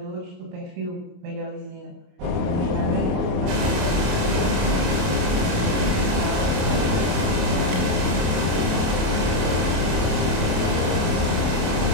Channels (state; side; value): late; left; 28 ms